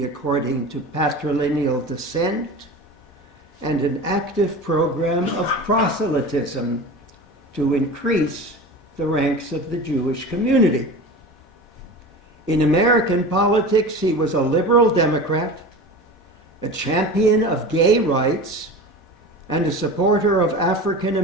according to patrilineal descent and an active program of proselytism to increase the ranks of the Jewish community. In American politics, he was a liberal Democrat, a champion of gay rights, and a supporter of African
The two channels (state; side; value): normal; both; correlation 0.33